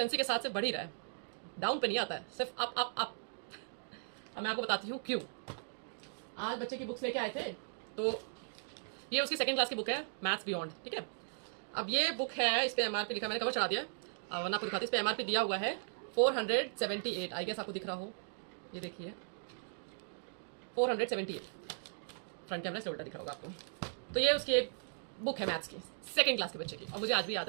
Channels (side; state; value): left; silent; digital silence